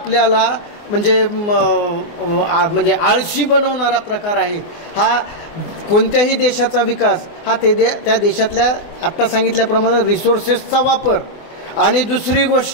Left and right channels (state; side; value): late; right; 24 ms